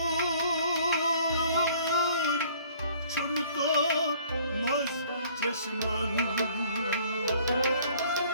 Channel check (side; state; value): both; inverted; correlation -0.56